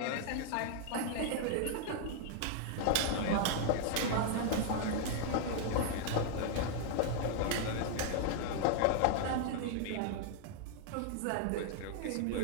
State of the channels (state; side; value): different; both; correlation 0.00